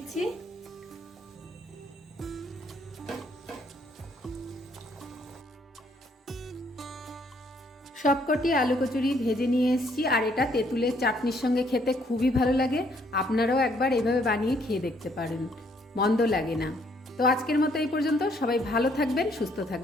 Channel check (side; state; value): both; normal; correlation 0.67